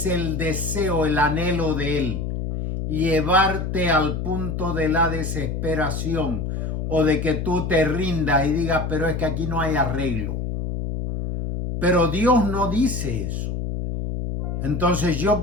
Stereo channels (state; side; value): noise; left; hum, 3 dB below the sound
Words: el deseo, el anhelo de él, llevarte al punto de la desesperación o de que tú te rindas y digas, pero es que aquí no hay arreglo. Pero Dios no dice eso. Entonces yo